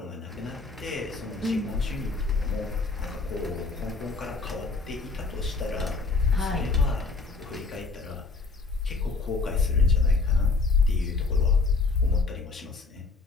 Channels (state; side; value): quieter; right; 3.9 dB